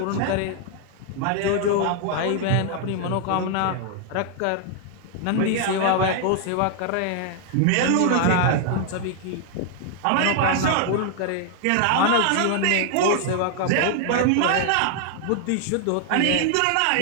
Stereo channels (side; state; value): both; different; correlation 0.00